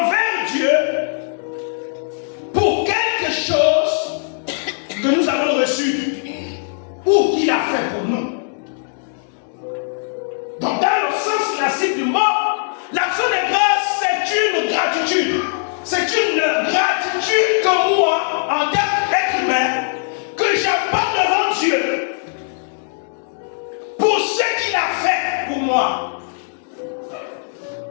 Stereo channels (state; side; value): silent; right; digital silence